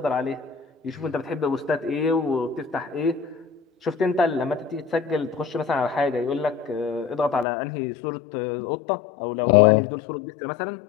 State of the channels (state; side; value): drops out; right; at 7.5 s